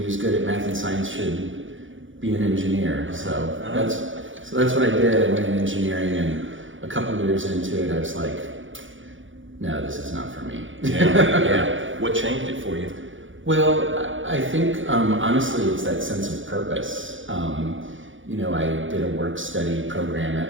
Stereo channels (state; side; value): late; left; 0.56 ms